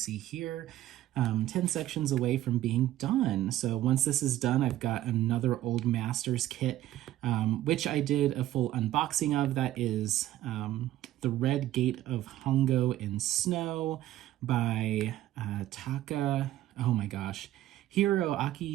here, 10 sections away from being done. So once this is done, I've got another Old Masters kit, which I did a full unboxing of. That is The Red Gate of Hongo in Snow by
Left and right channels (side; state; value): left; quieter; 14.0 dB